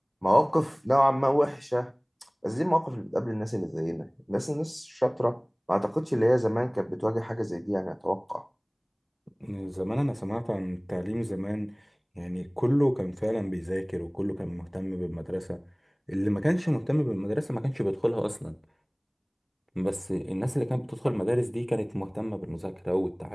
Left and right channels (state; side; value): identical; both; correlation 1.00